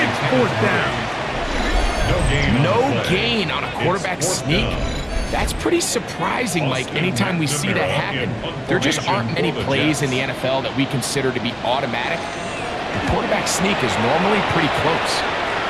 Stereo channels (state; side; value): identical; both; correlation 1.00